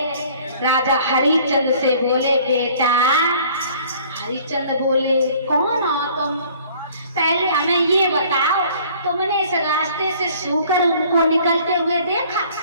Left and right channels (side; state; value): both; inverted; correlation -0.54